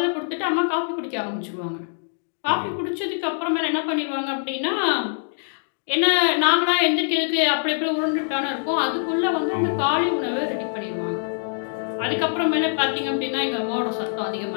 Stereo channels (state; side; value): silent; right; digital silence